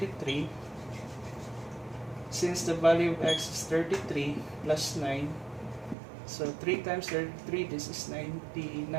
Since the value of x is 33 plus 9, so 3 times 33, this is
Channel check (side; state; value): left; drops out; at 6.0 s